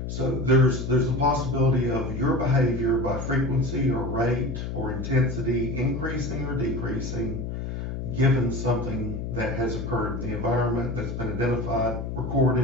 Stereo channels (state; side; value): noise; left; hum, 5 dB below the sound